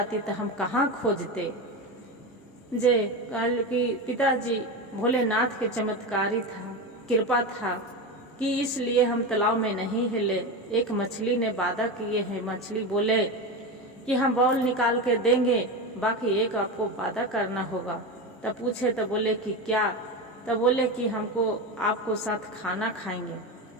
तो हम कहाँ खोजते। जे कल कि पिताजी भोलेनाथ के चमत्कारी था, कृपा था कि इसलिए हम तालाब में नहीं हिले। एक मछली ने वादा किए हैं। मछली बोले कि हम बॉल निकाल के देंगे, बाकी एक आपको वादा करना होगा। तब पूछे तो बोले कि क्या? तब बोले कि हमको आपको साथ खाना खाएंगे।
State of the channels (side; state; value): both; normal; correlation 0.20